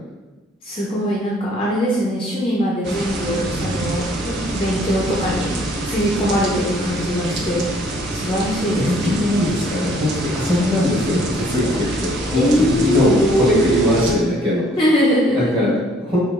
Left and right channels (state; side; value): normal; both; correlation 0.60